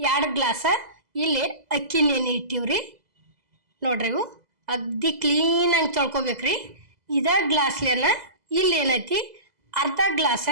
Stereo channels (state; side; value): late; left; 2.0 ms